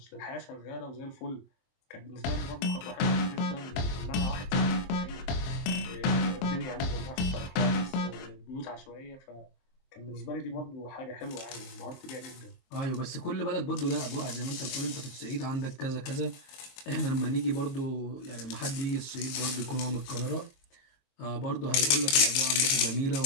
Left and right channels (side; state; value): right; late; 23 ms